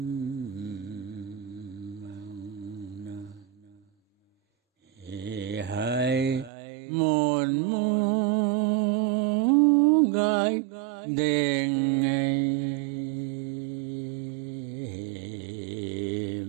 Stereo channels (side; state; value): left; drops out; at 6.5 s